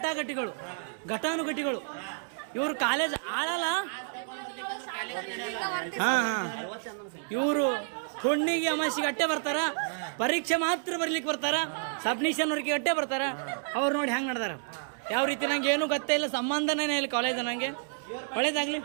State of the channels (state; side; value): silent; left; 58 dB below the other